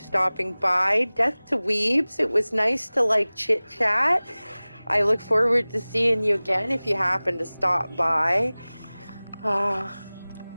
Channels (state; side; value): inverted; both; correlation -0.99